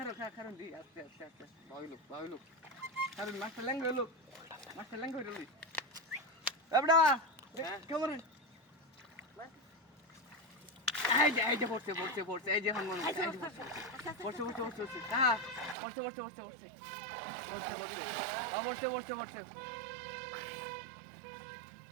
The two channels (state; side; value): drops out; left; at 15.8 s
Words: কারণ দি আস্তে বাউলু কারণ মাছটা ল্যাঙ্গ হইলো এবড়া কেমন এই যে পড়ছে এই যে হনমন পড়ছে হ্যাঁ পড়ছে